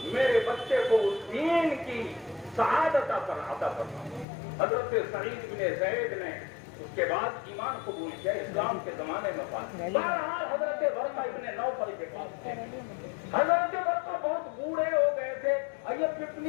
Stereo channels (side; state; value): right; drops out; at 4.2 s